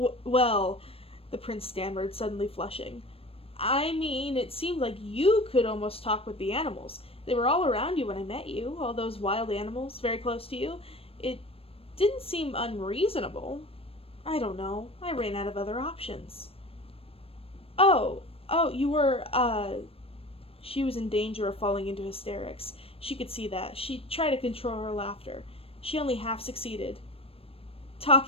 the prince stammered, suddenly flushing. "I mean, it seemed like you could almost talk with the animals. They were all around you when I met you, all those wild animals, very close to you. It didn't seem unreasonable. I don't know. I ran out of other options." Oh, you were, She was in danger of falling into hysterics. She could see that. She tried to control her laughter. She only half succeeded.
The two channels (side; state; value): right; late; 0.28 ms